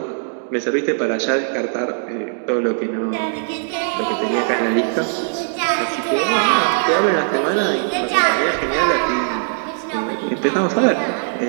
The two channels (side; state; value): left; silent; digital silence